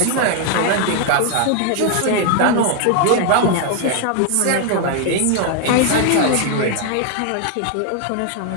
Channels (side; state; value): both; different; correlation 0.00